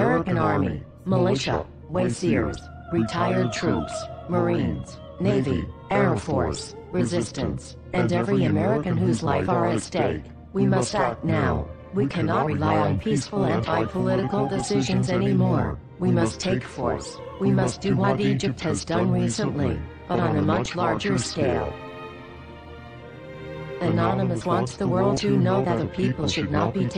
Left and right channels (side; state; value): both; identical; correlation 1.00